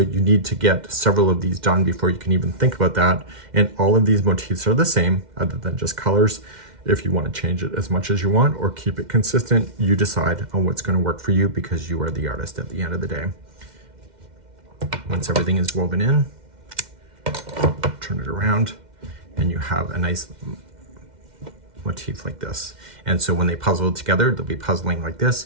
need to get several of these done before you can even think about that. And all of these motifs are the same other than just colors. If you want to change it as much as you want or keep it consistent, you decide on what's going to work for you, because you are the artist at the end of the day. Once everything is woven in, turn it around, and you have a nice motif like this. And so when they puzzle together, they'll be puzzling like this.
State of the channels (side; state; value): left; late; 2.1 ms